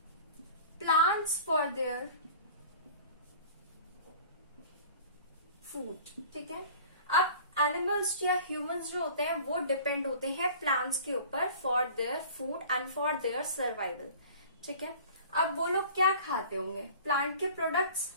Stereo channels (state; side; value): inverted; both; correlation -0.44